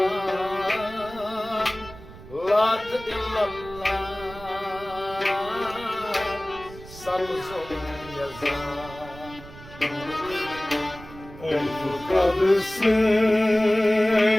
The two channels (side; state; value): right; noise; rumble, 17 dB below the sound